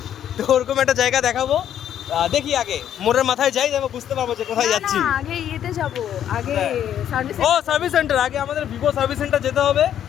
তো ওরকম একটা জায়গা দেখাবো। দেখি আগে মোড়ের মাথায় যাই, আমি বুঝতে পারবো যে কোথায় যাচ্ছি। আগে ইয়েতে যাব, আগে সার্ভিস সেন্টার। আগে আমাদের ভিভো সার্ভিস সেন্টার যেতে হবে,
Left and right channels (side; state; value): right; quieter; 10.2 dB